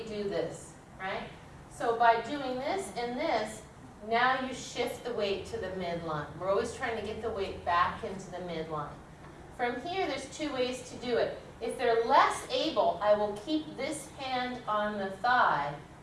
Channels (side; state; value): both; identical; correlation 1.00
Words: this, right? So by doing this and this, now you shift the weight to the midline. We're always trying to get the weight back into the midline. From here, there's two ways to do it. If they're less able, I will keep this hand on the thigh,